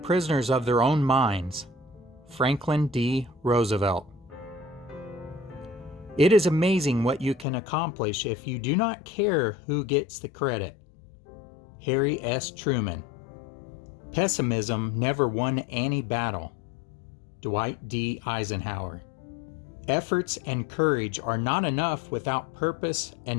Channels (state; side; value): drops out; right; at 7.5 s